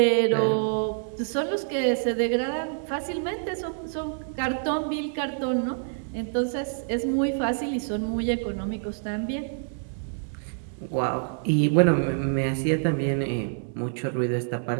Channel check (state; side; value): silent; left; digital silence